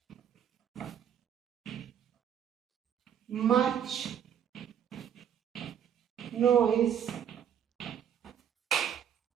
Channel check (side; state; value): left; quieter; 9.0 dB